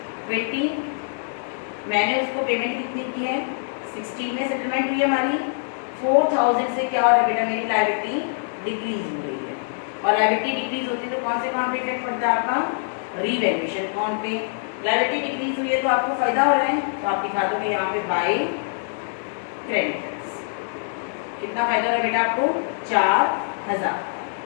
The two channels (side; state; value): right; silent; digital silence